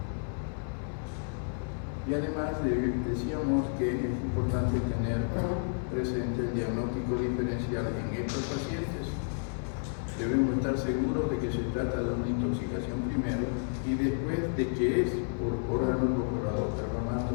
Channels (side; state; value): right; silent; 57 dB below the other